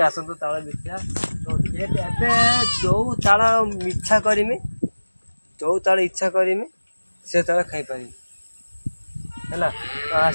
आसतु ताल देखिया तो जो ताल इच्छा करमी जो ताल इच्छा करमी से ताल खाई पारि है तो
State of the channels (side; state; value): both; inverted; correlation -1.00